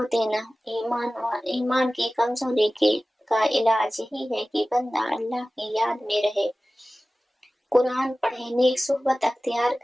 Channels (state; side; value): normal; both; correlation 0.97